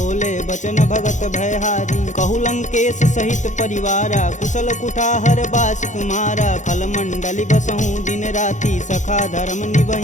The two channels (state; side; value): late; right; 0.35 ms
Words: बचन भगत भयहारी। कहु लंकेश सहित परिवारा, कुशल कुठाहर बास तुम्हारा। खल मंडली बसहूँ दिन राति, सखा धर्म